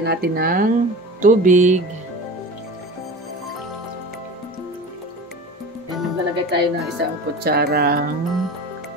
natin ng tubig. Ayan, maglalagay tayo ng isang kutsarang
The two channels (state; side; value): normal; both; correlation 0.34